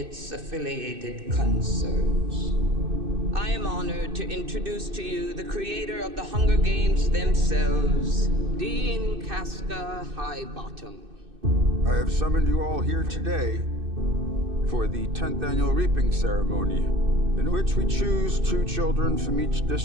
affiliated concerns. I am honored to introduce to you the creator of the Hunger Games themselves, Dean Casca Highbottom. I have summoned you all here today for the 10th annual reaping ceremony, in which we choose 2 children from each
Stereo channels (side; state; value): left; late; 2.6 ms